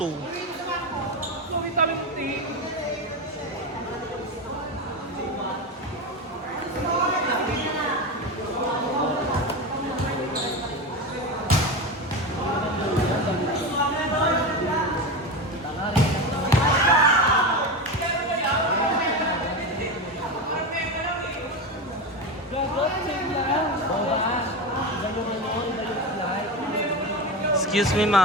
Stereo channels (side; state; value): both; normal; correlation 0.20